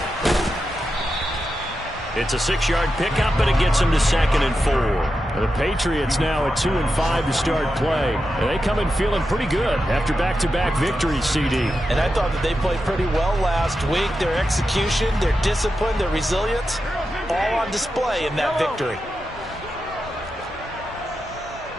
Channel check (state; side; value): normal; both; correlation 0.89